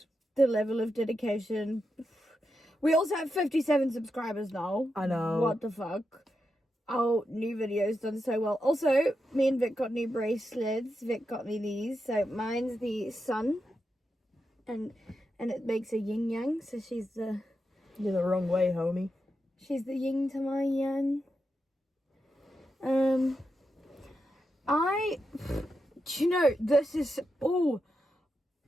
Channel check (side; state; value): both; normal; correlation 0.87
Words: the level of dedication. We also have 57 subscribers now. I know. What the fuck? Our new video's done so well. Also, me and Vic got new bracelets. Vic got me these. So mine's the sun. And it makes a yin yang. So she's the... You're the wrong way, homie. She's the yin to my yang. Do you know, this is... Oh...